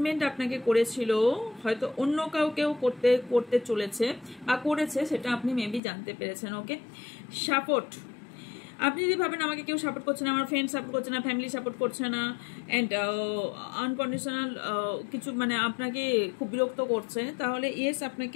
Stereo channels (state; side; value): drops out; right; at 5.8 s